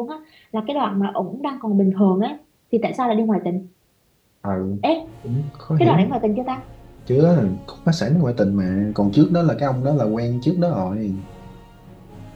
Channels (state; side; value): identical; both; correlation 1.00